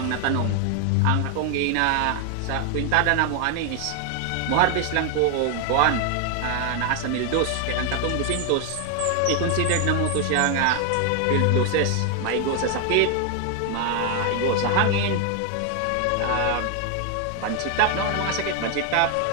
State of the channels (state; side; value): different; both; correlation 0.01